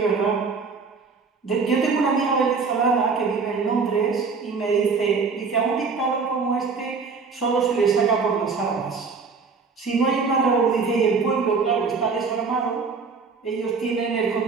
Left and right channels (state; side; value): quieter; left; 4.9 dB